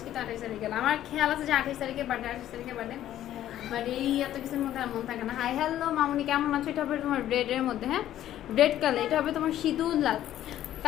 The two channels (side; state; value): right; quieter; 12.3 dB